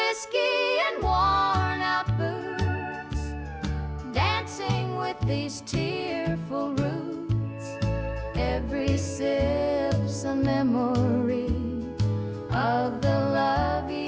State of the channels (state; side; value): identical; both; correlation 1.00